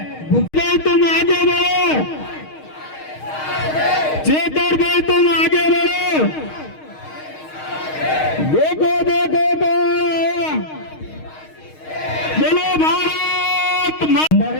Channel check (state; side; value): late; right; 6.4 ms